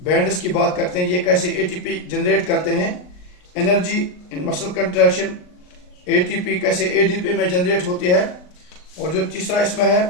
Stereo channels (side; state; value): right; late; 39 ms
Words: की बात करते हैं, ये कैसे एटीपी जनरेट करते हैं, energy in muscle contraction, ATP कैसे एडीपी में जनरेट होती है। और जो तीसरा इसमें है